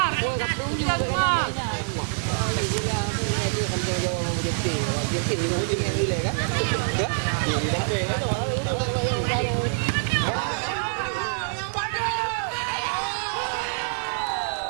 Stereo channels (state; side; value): silent; left; digital silence